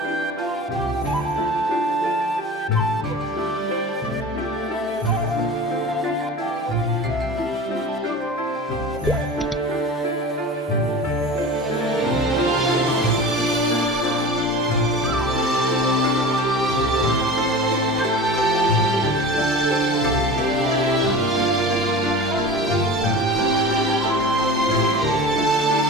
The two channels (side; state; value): both; normal; correlation 0.35